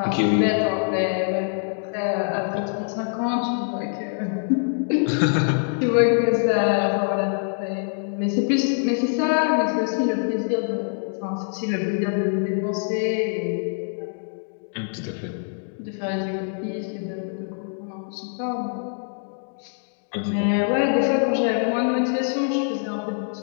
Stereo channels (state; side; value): silent; right; digital silence